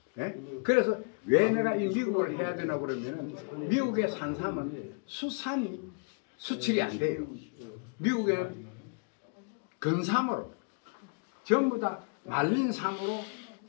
예? 그래서 왜 내가 이 미국을 해야 되나 그러면은 미국의 산삼은 수산이 수출이 안 돼요. 미국에는 근삼으로 전부 다 말린 삼으로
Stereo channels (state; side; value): quieter; right; 37.5 dB